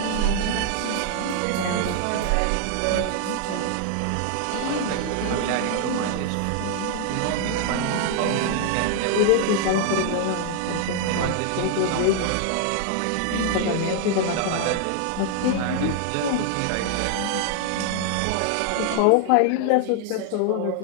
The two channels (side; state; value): both; different; correlation 0.00